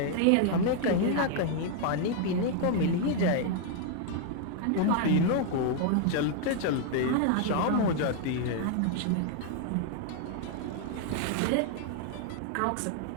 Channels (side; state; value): both; different; correlation 0.00